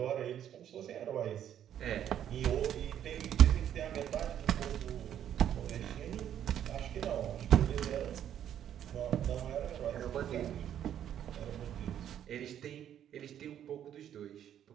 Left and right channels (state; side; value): quieter; left; 10.2 dB